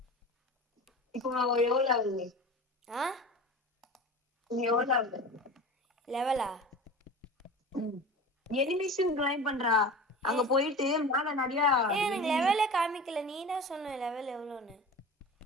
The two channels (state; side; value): normal; both; correlation 0.34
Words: இப்போ எவ்வளவு ஆகுது? நீ எவ்வளவு ஆகுது லெவலா? எனிமேஷன் கிளைம் பண்றா. அங்க போயிட்டு மேல நிறைய எனக்கு லெவலே காமிக்கல. நீ தான் சொன்ன லெவல் எவ்வளோன்னு.